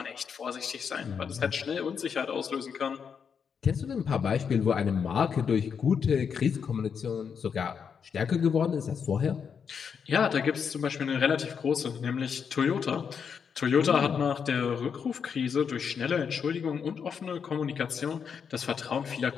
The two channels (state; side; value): quieter; right; 6.7 dB